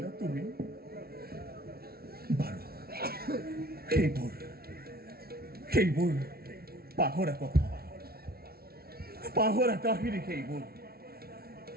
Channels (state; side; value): late; left; 0.44 ms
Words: তুমি বাৰু সেইবোৰ পাহৰা কথা পাহৰা কাহিনী সেইবোৰ